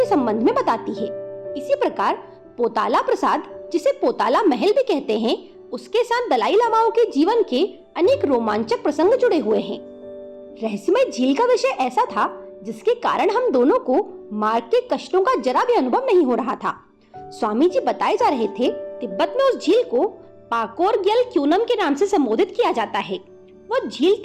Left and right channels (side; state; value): both; identical; correlation 1.00